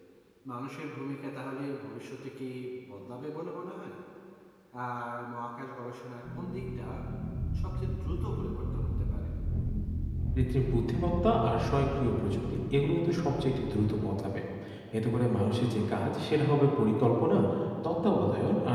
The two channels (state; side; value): identical; both; correlation 1.00